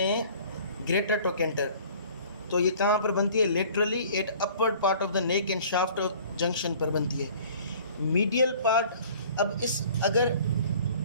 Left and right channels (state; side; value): inverted; both; correlation -0.50